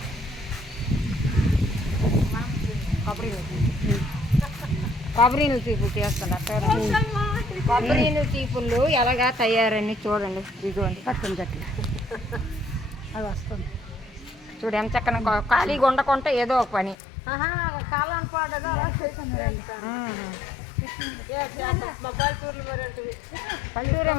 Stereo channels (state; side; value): drops out; right; at 16.9 s